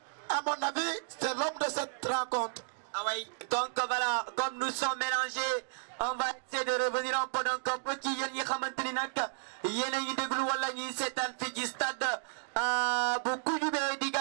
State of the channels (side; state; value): left; silent; digital silence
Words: à mon avis, c'est l'homme de cette rencontre. Oui, donc voilà, comme nous sommes mélangés, on va essayer de revenir un peu donc un peu qui yéen ñi xamanteni nak yéen a ngi déglu wala ñi seetaan fi ci stade bu Koudioumbé